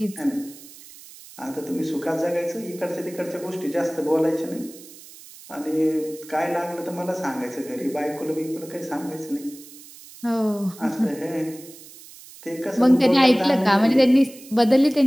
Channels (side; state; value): right; noise; hiss, 19 dB below the sound